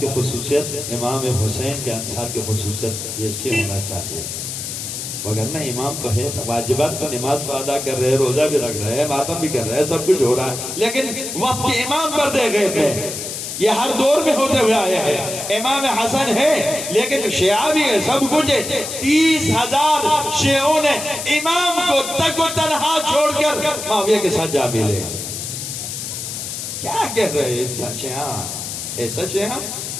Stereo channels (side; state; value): left; noise; hiss, 6 dB below the sound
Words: خصوصیت، امام حسین کے انصار کی خصوصیت ایسی ہونا چاہیے، وگرنہ امام تو ہے، واجبات تو نماز کو ادا کر رہے ہیں، روزہ بھی رکھ رہے ہیں، ماتم بھی کر رہے ہیں، سب کچھ ہو رہا ہے، لیکن وقت کے امام پر دے گئے تھے۔ یہ ہر دور میں ہوتے ہوئے آیا ہے۔ امام حسن ہے لیکن شیعہ بھی ہے، سب کچھ ہے۔ 30,000 شیعوں نے امام کو تک و تنہا چھوڑ کر معاویہ کے ساتھ جا ملے۔ کیا کہہ رہے ہیں شیعہ؟ ایسا شیعہ